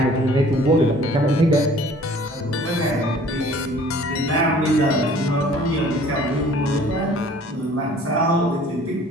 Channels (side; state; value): both; normal; correlation 0.52